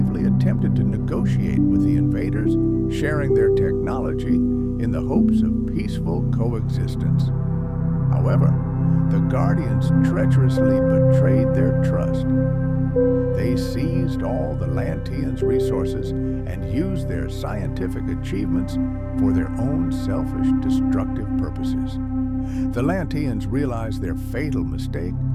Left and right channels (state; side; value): identical; both; correlation 1.00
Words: attempted to negotiate with the invaders, sharing their technology in the hopes of peaceful coexistence. However, the Guardians treacherously betrayed their trust. They seized all the Lanteans' resources and used their scientific achievements for their own selfish, destructive purposes. The Lanteans realized their fatal mistake